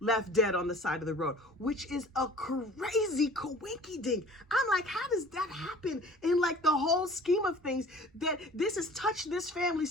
dead on the side of the road, which is a crazy coinky dink. I'm like, how does that happen in like the whole scheme of things, that this has touched this family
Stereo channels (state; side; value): normal; both; correlation 0.47